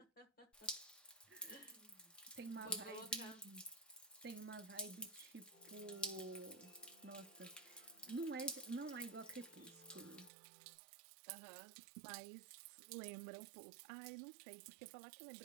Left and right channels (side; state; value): left; drops out; at 10.3 s